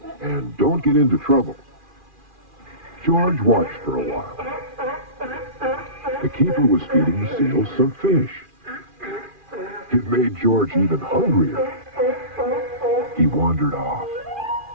And don't get into trouble. George watched for a while. The keeper was feeding the seals some fish. It made George even hungrier. He wandered off.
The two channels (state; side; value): late; left; 2.4 ms